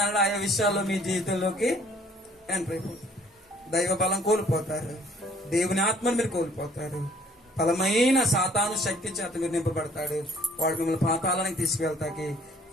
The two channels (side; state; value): both; normal; correlation 0.59